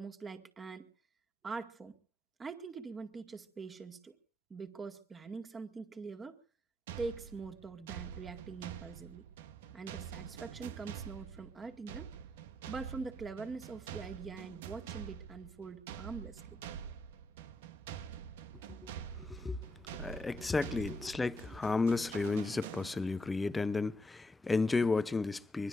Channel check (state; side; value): normal; both; correlation 0.82